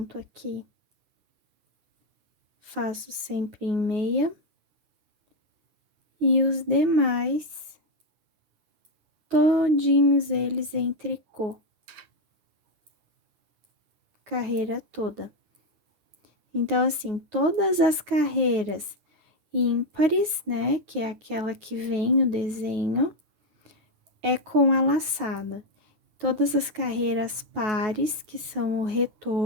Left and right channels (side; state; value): left; late; 9.4 ms